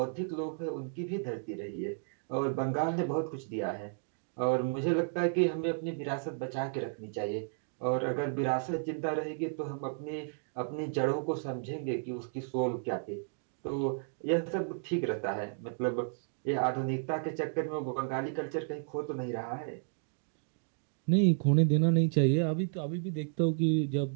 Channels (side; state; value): left; silent; digital silence